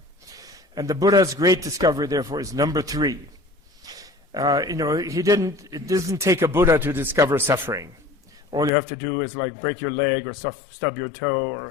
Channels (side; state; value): right; drops out; at 8.7 s